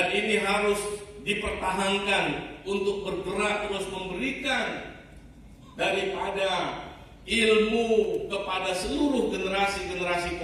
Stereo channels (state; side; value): identical; both; correlation 1.00